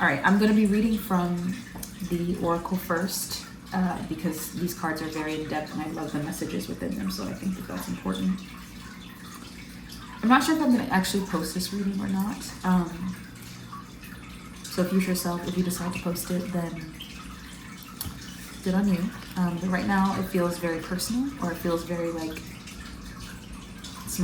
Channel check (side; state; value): both; identical; correlation 1.00